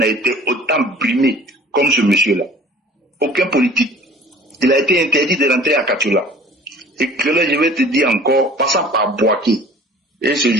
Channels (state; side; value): normal; both; correlation 0.48